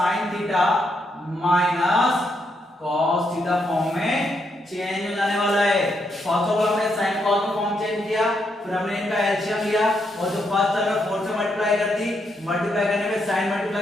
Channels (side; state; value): both; normal; correlation 0.78